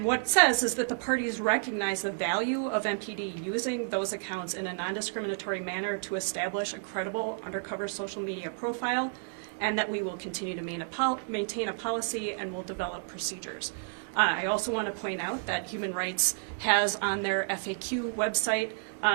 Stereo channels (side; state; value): left; silent; digital silence